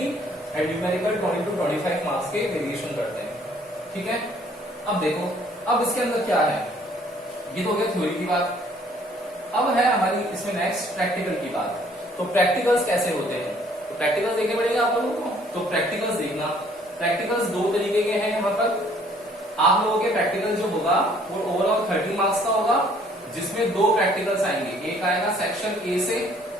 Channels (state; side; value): normal; both; correlation 0.60